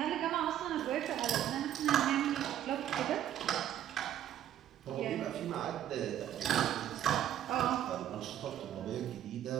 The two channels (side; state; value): left; quieter; 11.1 dB